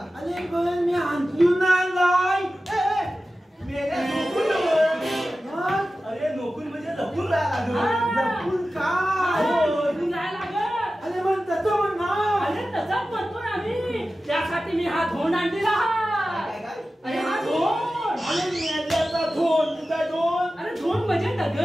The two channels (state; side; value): normal; both; correlation 0.94